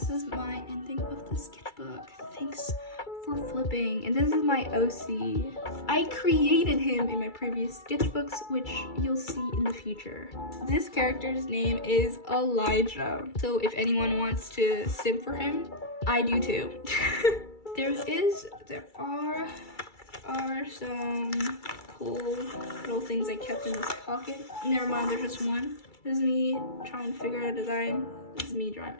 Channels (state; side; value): late; right; 2.3 ms